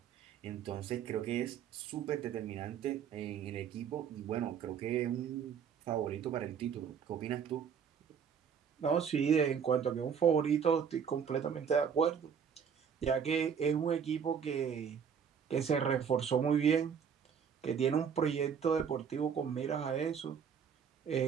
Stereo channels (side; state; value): left; quieter; 7.3 dB